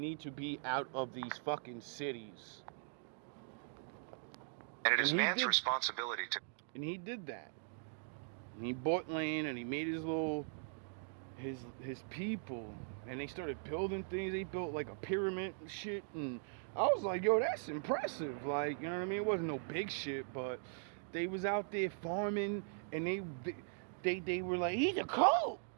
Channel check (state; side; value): silent; left; digital silence